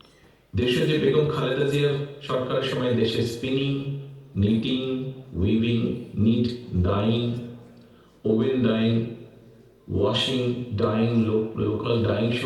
দেশে যে বেগম খালেদা জিয়ার সরকারের সময় দেশে spinning, knitting, weaving, knit, dyeing, woven dyeing, washing, dyeing, local dyeing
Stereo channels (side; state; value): both; identical; correlation 1.00